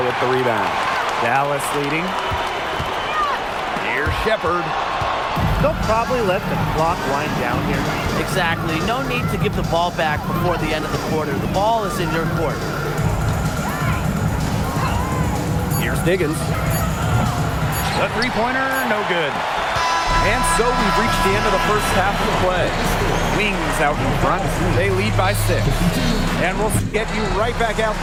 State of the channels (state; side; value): identical; both; correlation 1.00